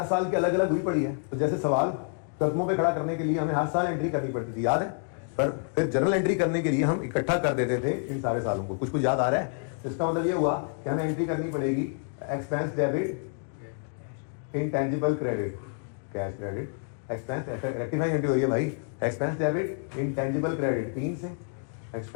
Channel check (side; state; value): right; silent; 58 dB below the other